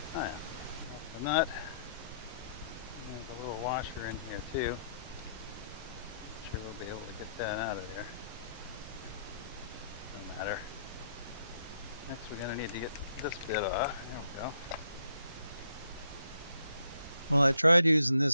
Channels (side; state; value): both; inverted; correlation -0.71